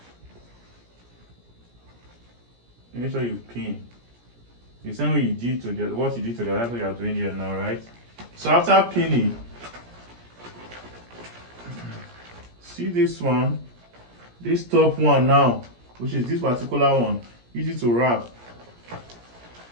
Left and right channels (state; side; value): late; left; 17 ms